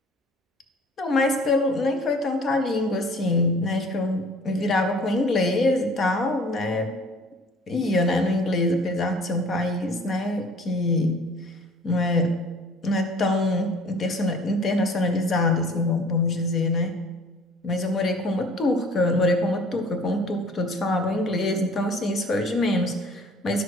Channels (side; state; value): both; normal; correlation 0.51